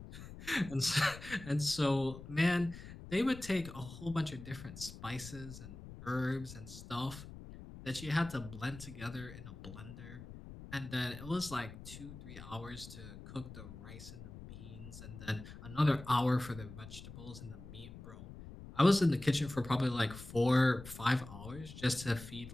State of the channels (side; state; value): left; noise; rumble, 14 dB below the sound